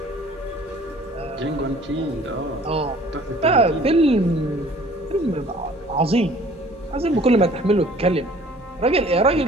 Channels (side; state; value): right; noise; rumble, 28 dB below the sound